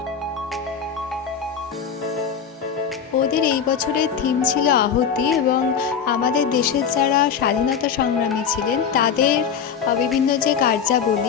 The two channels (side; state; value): right; quieter; 7.2 dB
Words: ওদের এই বছরের থিম ছিল আহুতি, এবং আমাদের দেশের যারা স্বাধীনতা সংগ্রামী ছিলেন তাদের বিভিন্ন যে